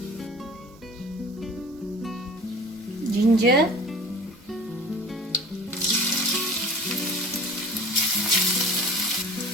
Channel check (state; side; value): normal; both; correlation 0.42